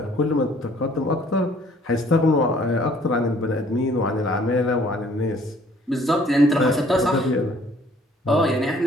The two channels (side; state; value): both; normal; correlation 0.58